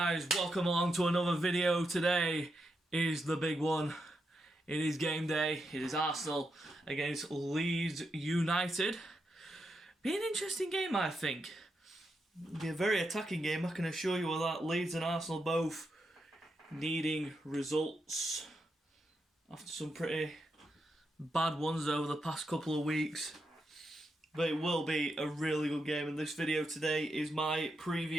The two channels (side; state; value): both; normal; correlation 0.84